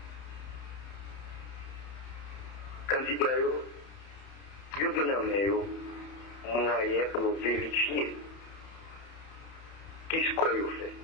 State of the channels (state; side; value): late; right; 31 ms